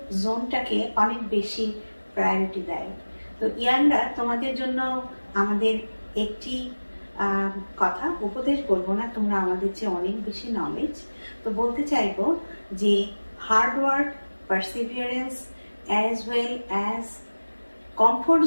জোনটাকে অনেক বেশি প্রায়োরিটি দেয়। তো ইয়াংরা, তোমাদের জন্য আমাদের একটি কথা, উপদেশ বলবো না, তোমরা আমাদের চেয়ে অনেক বেশি নলেজ। তো বলতে চাইবো যে hard work, perseverance as well as comfort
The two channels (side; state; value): both; inverted; correlation -1.00